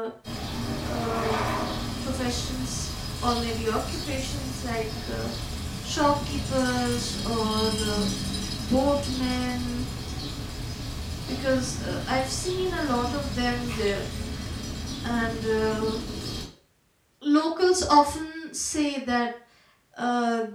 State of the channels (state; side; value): identical; both; correlation 1.00